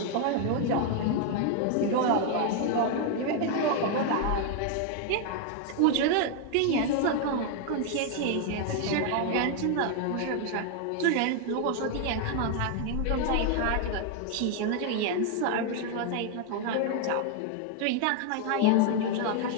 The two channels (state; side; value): different; both; correlation 0.00